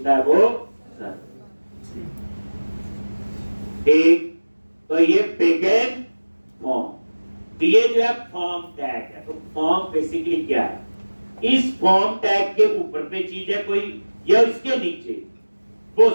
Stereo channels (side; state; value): both; inverted; correlation -1.00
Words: है, वो सर्वर। ठीक, तो ये बिगिन फॉर्म, तो ये जो है फॉर्म टैग है। तो फॉर्म बेसिकली क्या है, इस फॉर्म टैग के ऊपर पे चीज है कोई, या इसके नीचे, वो